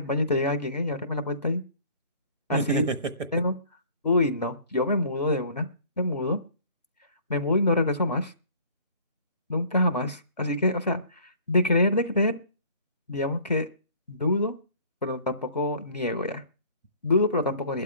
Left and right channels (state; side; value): inverted; both; correlation -0.51